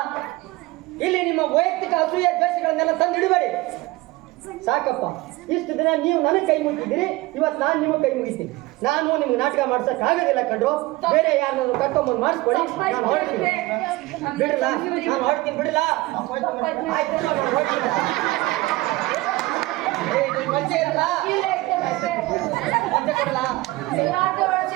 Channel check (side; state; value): left; quieter; 20.2 dB